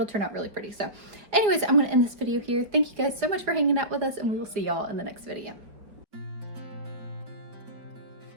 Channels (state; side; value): late; left; 4.6 ms